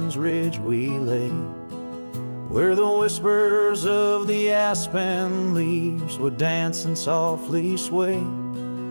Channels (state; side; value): inverted; both; correlation -1.00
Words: Ridge we lay, where the whispers of the aspen leaves would dance and softly sway.